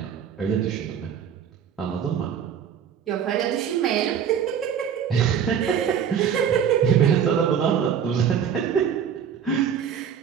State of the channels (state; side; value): quieter; left; 8.1 dB